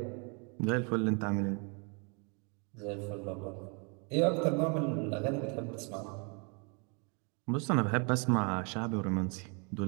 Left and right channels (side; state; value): left; quieter; 35.1 dB